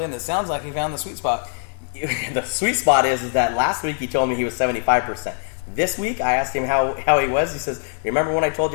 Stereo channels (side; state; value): right; silent; 64 dB below the other